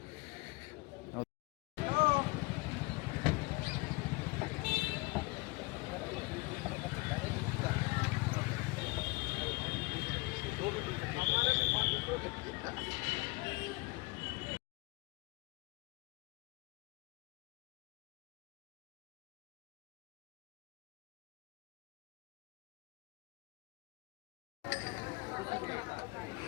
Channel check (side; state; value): right; quieter; 25.2 dB